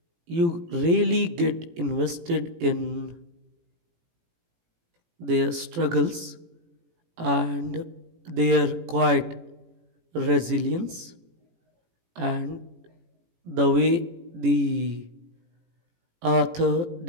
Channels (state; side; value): late; left; 18 ms